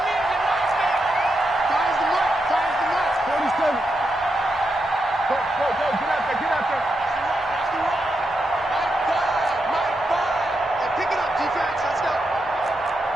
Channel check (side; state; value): both; normal; correlation 0.85